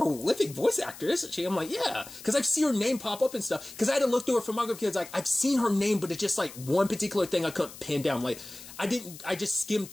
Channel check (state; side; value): noise; left; hiss, 16 dB below the sound